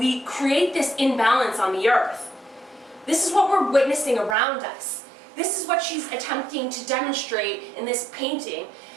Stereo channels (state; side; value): drops out; left; at 4.4 s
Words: create this imbalance on the earth. This is what we're witnessing around us. This is what she's attempting to demonstrate in this painting